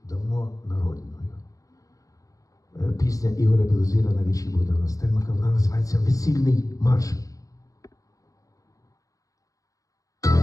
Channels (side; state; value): right; late; 0.16 ms